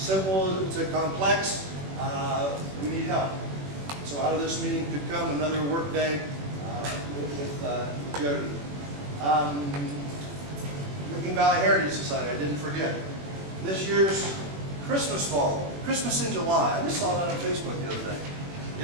to complex. We need help. So out of this meeting could come another work day with Jody. Licking Valley Heritage Society, I didn't forget. This year's Christmas ball, Christmas in July. I just saw that on Facebook the other day.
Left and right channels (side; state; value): left; late; 21 ms